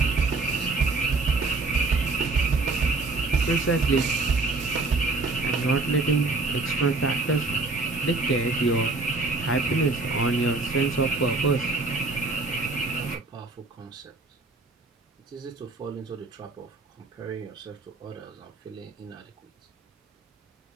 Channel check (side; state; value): left; quieter; 3.6 dB